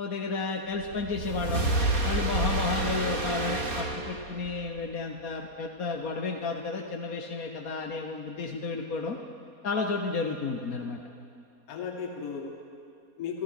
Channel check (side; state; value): right; late; 4.2 ms